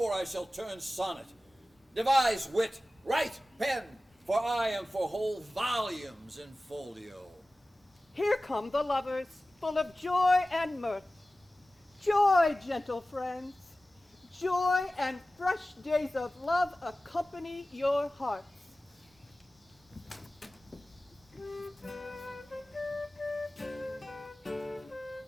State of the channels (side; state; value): both; normal; correlation 0.96